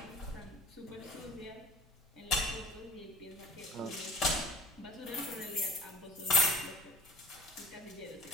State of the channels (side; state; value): both; normal; correlation 0.42